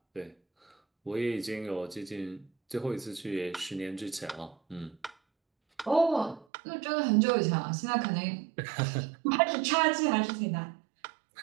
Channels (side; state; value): left; drops out; at 6.5 s